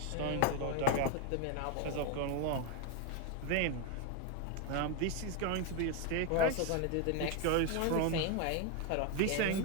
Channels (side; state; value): both; different; correlation 0.02